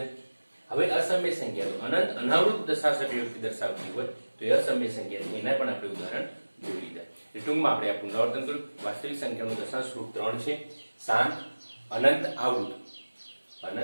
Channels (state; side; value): inverted; both; correlation -1.00